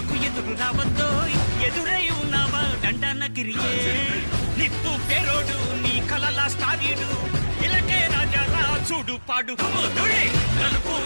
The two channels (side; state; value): both; inverted; correlation -1.00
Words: ఎదురు రావద్దో ఎదురై ఉన్నావా దండనగిరియే నిప్పు పేరోడు నీ కలలా స్టారీడు ఇలకే రాజా చూడు పాడు కుముదుడే నలుపు